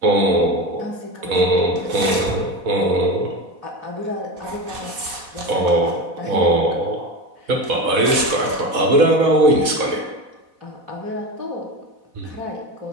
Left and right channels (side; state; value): left; late; 4.1 ms